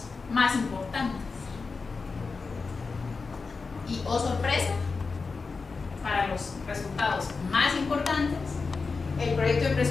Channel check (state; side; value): quieter; right; 4.5 dB